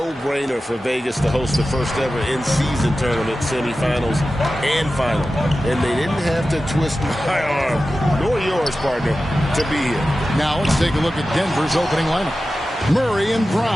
for Vegas to host the first ever in-season tournament semifinals and final. And they didn't have to twist my arm, nor yours, partner, to be here. Now let's take a look at Denver's opening lineup. Murray and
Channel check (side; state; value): both; normal; correlation 0.94